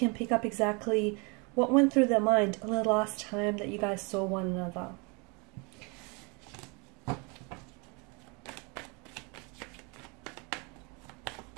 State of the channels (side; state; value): left; quieter; 31.5 dB